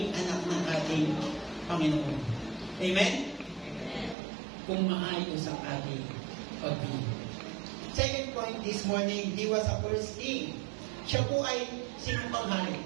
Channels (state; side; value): drops out; left; at 4.2 s